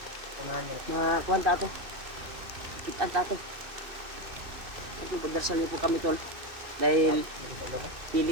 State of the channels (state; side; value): late; left; 2.6 ms